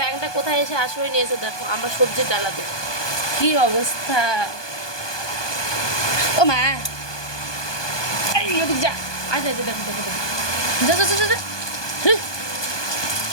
কোথায় এসে আশ্রয় নিয়েছে দেখো আমার সবজির ডালাতে। কি অবস্থা। ও মা, যা আচ্ছা আচ্ছা, দেখো দেখো দেখো, যা যা যা যা।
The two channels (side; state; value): right; late; 1.2 ms